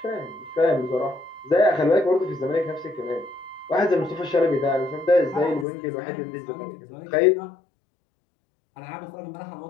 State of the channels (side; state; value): right; drops out; at 5.7 s